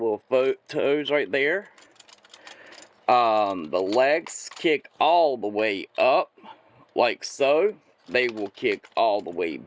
toes right there. The legs kick all the way up, like so. They will kick all the way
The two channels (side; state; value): both; identical; correlation 1.00